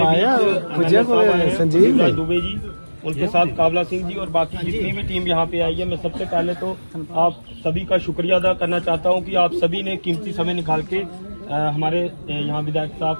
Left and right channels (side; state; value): both; inverted; correlation -1.00